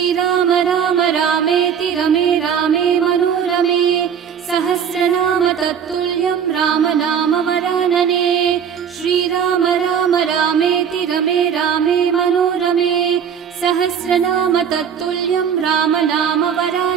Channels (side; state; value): left; quieter; 7.8 dB